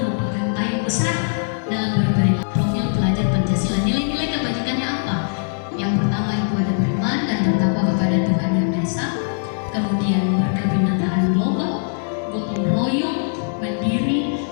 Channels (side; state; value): right; silent; digital silence